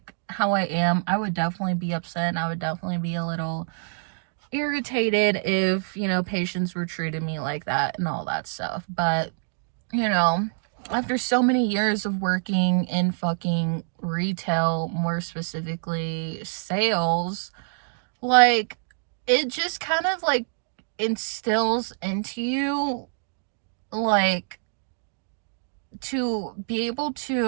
how I am, I would definitely be upset, and I would definitely be a little irritated if, patients were treating me like that and all that stuff. But, after so many years of working in fucking retail, more specifically sales, it just kind of instills into you to be able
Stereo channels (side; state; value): left; silent; digital silence